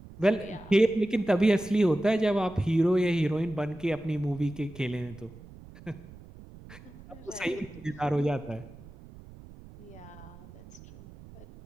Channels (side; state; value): right; noise; rumble, 19 dB below the sound